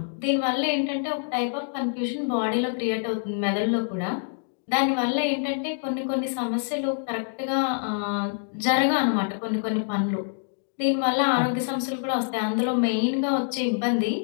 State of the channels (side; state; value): right; silent; digital silence